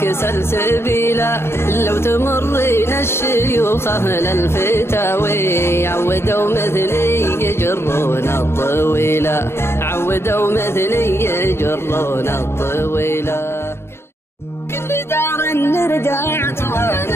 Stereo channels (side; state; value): right; late; 0.12 ms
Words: سلسبيلا، لو تمرين الشيوخ اهل الفتاوي عودوا مثلي يجرون الطويلة، عودوا مثلي يجرون الطويلة. كل دار نرجعت